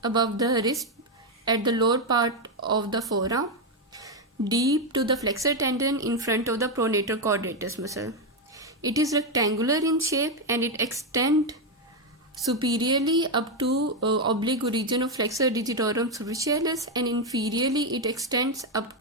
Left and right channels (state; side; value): normal; both; correlation 0.05